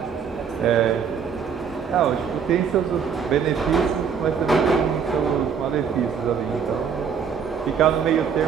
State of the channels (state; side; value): quieter; left; 6.8 dB